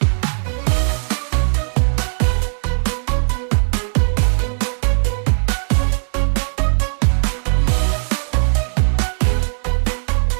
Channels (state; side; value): silent; left; 66 dB below the other